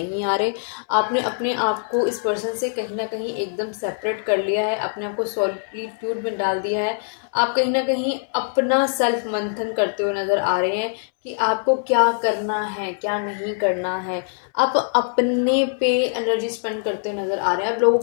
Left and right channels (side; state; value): right; silent; 64 dB below the other